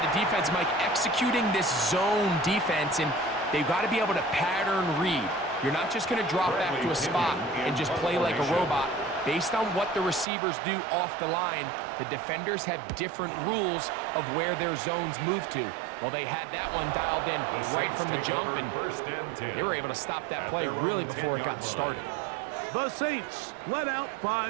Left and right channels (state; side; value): drops out; left; at 10.2 s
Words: defense, Mike, executing this zone defense, and they've got to be able to pattern read. You're not just going to drop back to a spot and just play like a robot. Based on what the receivers do off the line, the defenders have different rules of where their zones move to. Well, they had that one dialed in right from the jump, and they were able to stop that play really before it got started. The Saints led out